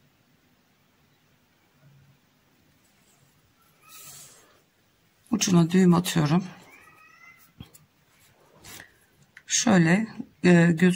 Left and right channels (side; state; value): both; identical; correlation 1.00